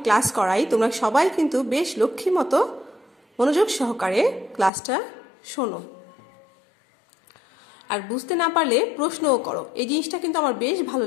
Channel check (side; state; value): right; drops out; at 4.7 s